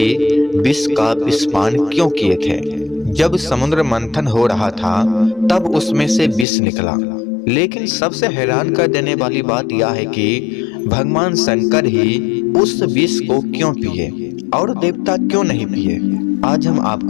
विष का विषपान क्यों किए थे। जब समुद्र मंथन हो रहा था तब उसमें से विष निकला, लेकिन सबसे हैरान कर देने वाली बात यह है कि भगवान शंकर ही उस विष को क्यों पिए और देवता क्यों नहीं पिए। आज हम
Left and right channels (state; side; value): drops out; right; at 6.5 s